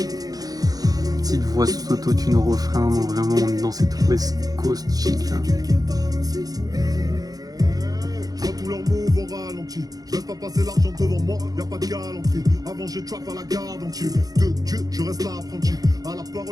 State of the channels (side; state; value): left; late; 0.18 ms